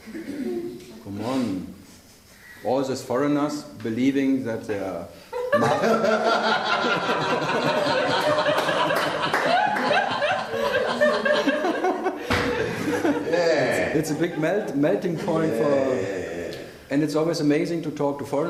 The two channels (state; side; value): identical; both; correlation 1.00